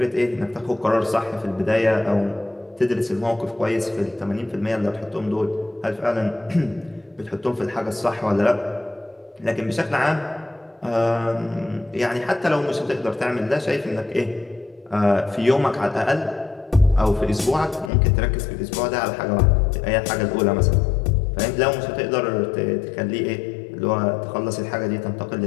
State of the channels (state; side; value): drops out; right; at 17.9 s